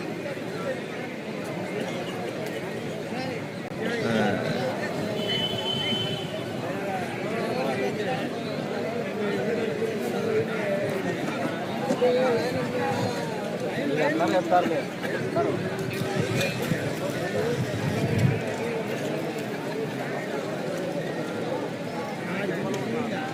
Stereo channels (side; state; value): both; identical; correlation 1.00